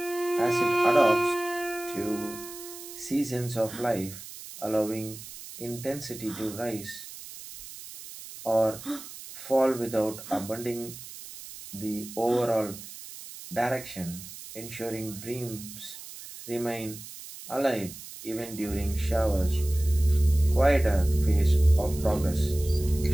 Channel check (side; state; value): right; noise; hiss, 14 dB below the sound